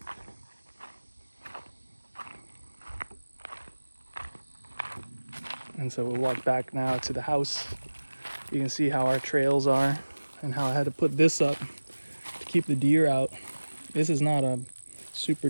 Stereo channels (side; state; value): both; inverted; correlation -1.00